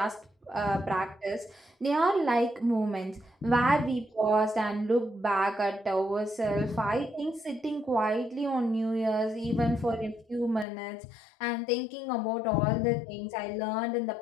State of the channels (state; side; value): drops out; right; at 10.7 s